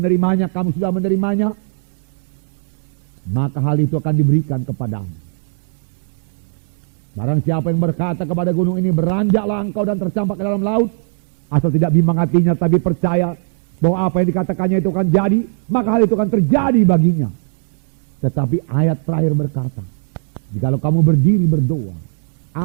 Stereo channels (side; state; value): left; silent; 62 dB below the other